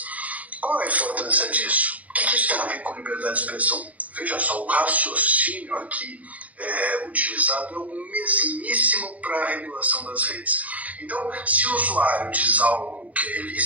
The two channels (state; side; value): late; left; 0.071 ms